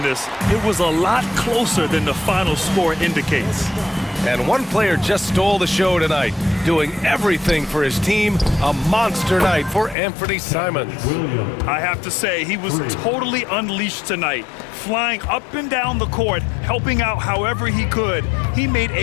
it was a lot closer than the final score indicates. And one player just stole the show tonight, doing everything for his team. A monster night for Anthony Simons. I have to say, he was totally unleashed tonight. Flying up and down the court, helping out however he could. He made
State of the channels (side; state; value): right; drops out; at 10.0 s